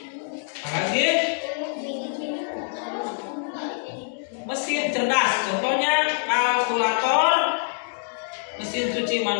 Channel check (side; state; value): right; silent; 62 dB below the other